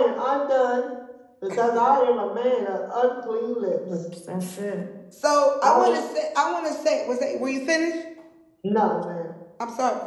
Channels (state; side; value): identical; both; correlation 1.00